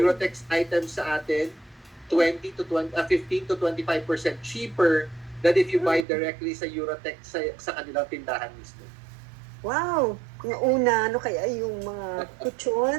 items sa atin 15 to 25% cheaper than if you buy mm. directly sa Eurotex sa kanilang tindahan mismo. Wow. Yung una, ano kaya yung mga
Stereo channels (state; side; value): drops out; left; at 6.1 s